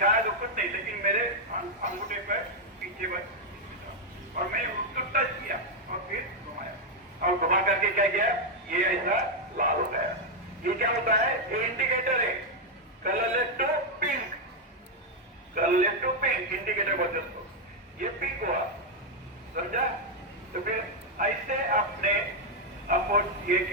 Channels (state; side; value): normal; both; correlation 0.00